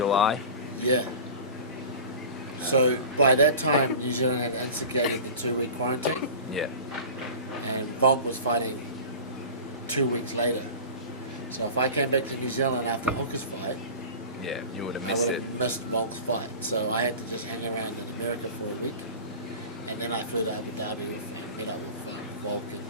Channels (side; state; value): both; inverted; correlation -0.36